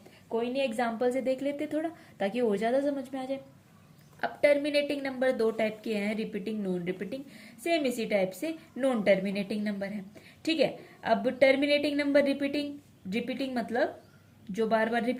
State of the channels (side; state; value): both; identical; correlation 1.00